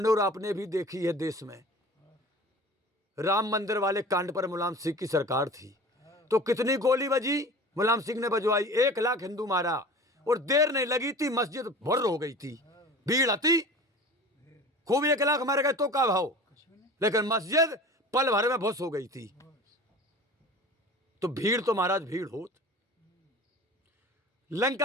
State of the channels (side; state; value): both; normal; correlation 0.39